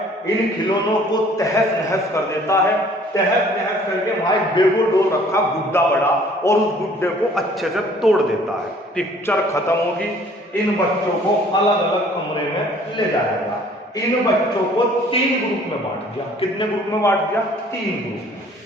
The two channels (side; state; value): both; normal; correlation 0.55